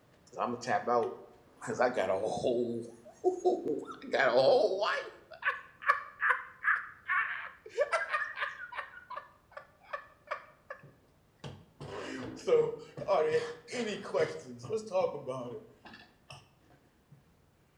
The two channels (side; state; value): both; identical; correlation 1.00